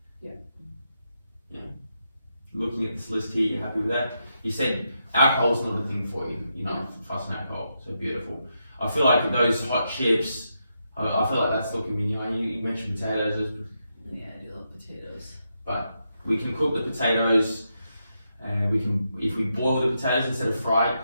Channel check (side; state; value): both; inverted; correlation -0.83